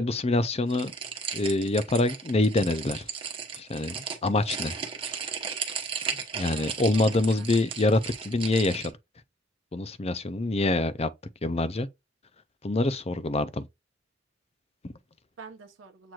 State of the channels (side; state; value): both; normal; correlation 0.60